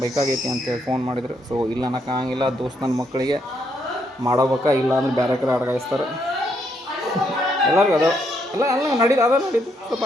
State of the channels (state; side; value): normal; both; correlation 0.75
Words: ಬೇಕಾಗೈತಿ ಅಂತೇಳಿ ಫೋನ್ ಮಾಡಿದ್ರು. ಸೊ ಇಲ್ಲ ಅನ್ನೋಕ್ಕಾಗಿಲ್ಲ, ದೋಸ್ತ್ ನನ್ನ ಮಕ್ಕಳಿಗೆ ಮಾಡೋಬೇಕಾ, ಇಲ್ಲ ಅಂದ್ರೆ ಬೇರೆ ಕಡೆ ಅಡ್ಗಾಯಿಸ್ತಾರೆ. ಎಲ್ಲರಿಗೂ ಅದು ಎಲ್ಲ ನಡೀದು